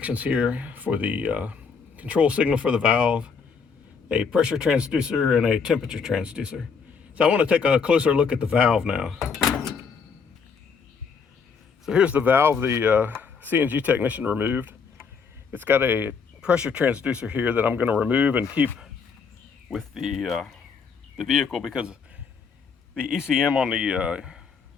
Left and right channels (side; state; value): right; quieter; 5.7 dB